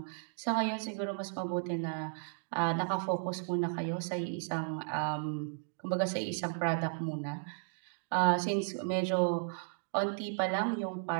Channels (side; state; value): left; silent; digital silence